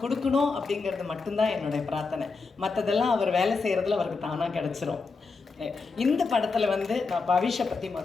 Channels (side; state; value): right; quieter; 4.4 dB